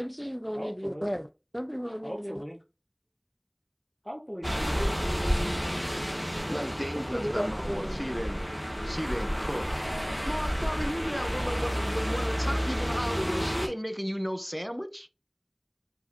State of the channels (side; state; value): both; identical; correlation 1.00